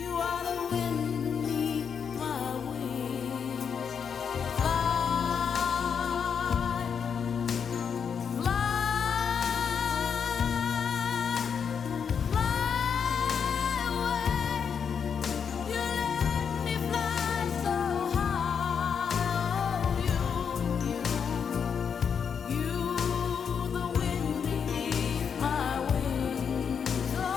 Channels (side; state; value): right; quieter; 6.9 dB